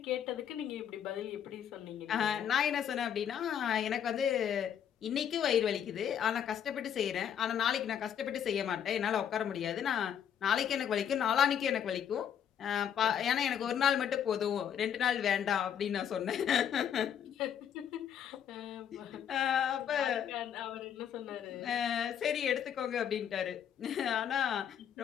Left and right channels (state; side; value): quieter; right; 8.9 dB